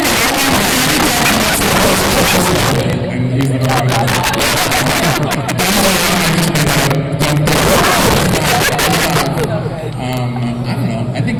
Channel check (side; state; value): both; identical; correlation 1.00